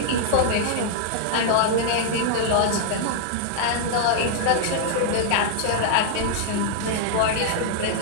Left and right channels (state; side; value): different; both; correlation -0.01